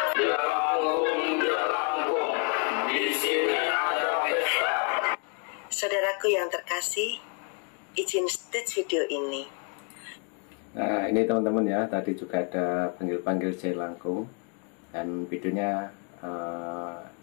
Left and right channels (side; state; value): right; quieter; 39.9 dB